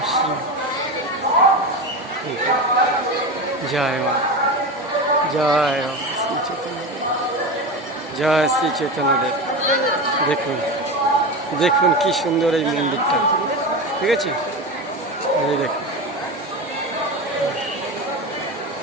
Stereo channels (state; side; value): normal; both; correlation 0.23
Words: জয় মা, জয় শ্রী চৈতন্যদেব, জয় শ্রী চৈতন্যদেব। দেখুন দেখুন কি সুন্দর এই মন্দিরটা, ঠিক আছে? এই দেখুন